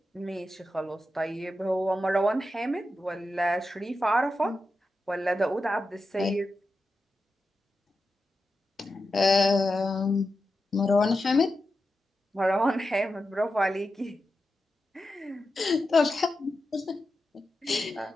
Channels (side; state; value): both; normal; correlation 0.90